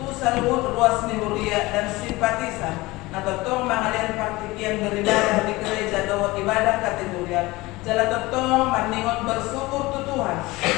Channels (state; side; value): quieter; right; 20.9 dB